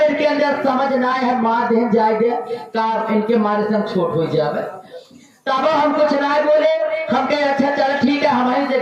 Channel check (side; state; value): both; identical; correlation 1.00